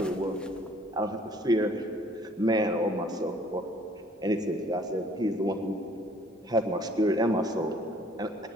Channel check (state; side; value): normal; both; correlation 0.58